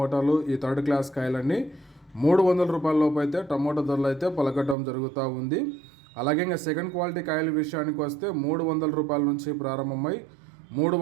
ఈ థర్డ్ క్లాస్ కాయలన్నీ 300 రూపాయల లోపు అయితే టమోటా ధరలు అయితే పలకటం జరుగుతూ ఉంది. అలాగే ఇంకా సెకండ్ క్వాలిటీ కాయల విషయానికి వస్తే 300 రూపాయల నుంచి ప్రారంభమై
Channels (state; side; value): drops out; left; at 4.8 s